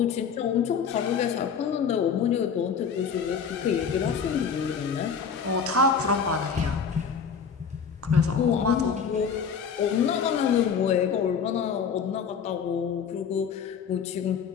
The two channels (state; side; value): quieter; right; 6.5 dB